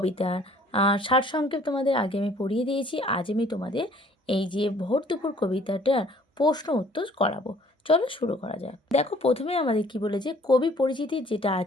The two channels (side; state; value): both; normal; correlation 0.57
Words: সারসংক্ষেপ তোমাদের আগে আমি পড়িয়ে দিয়েছি। আজ আমি তোমাদের এই যে ভোর দুপুর কবিতাটার প্রশ্ন উত্তর করাবো। চলো শুরু করা যাক। দেখো প্রথমে আমাদের কি বলেছে, কবি পরিচিতি যেটা